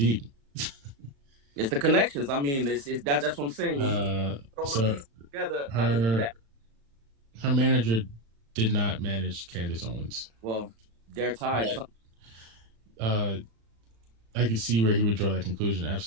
It's the connections. I mean, that's what I'm saying. So together, her manager did not manage Candace Owens. Well, they're tied. I can see where he would draw that conclusion.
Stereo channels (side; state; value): left; late; 36 ms